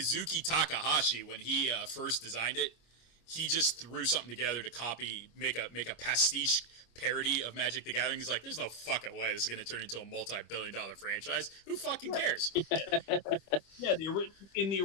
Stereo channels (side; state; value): right; late; 25 ms